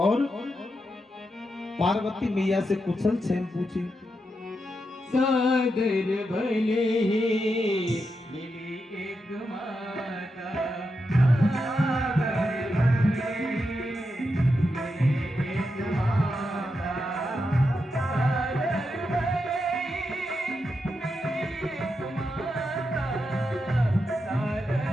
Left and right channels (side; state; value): both; normal; correlation 0.86